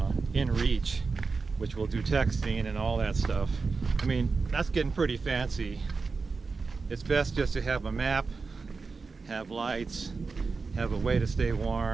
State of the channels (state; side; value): quieter; left; 4.4 dB